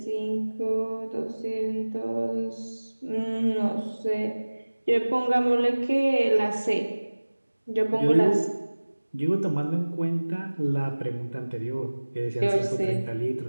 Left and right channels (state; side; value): inverted; both; correlation -1.00